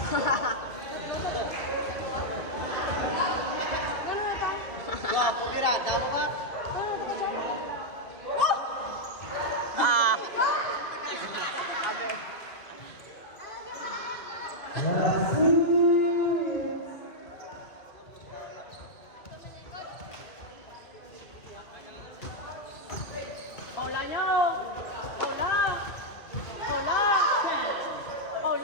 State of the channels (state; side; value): late; right; 2.4 ms